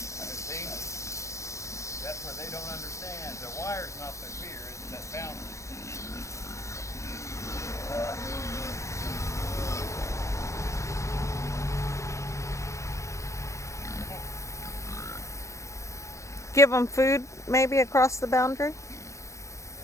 See? That's what they don't understand. The wire's not their fear, it's that boundary. Give them food maybe across the boundary?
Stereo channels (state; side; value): late; right; 0.15 ms